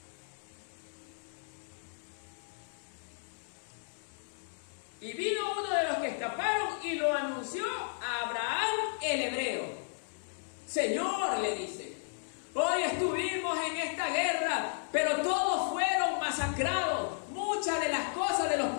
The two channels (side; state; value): right; silent; digital silence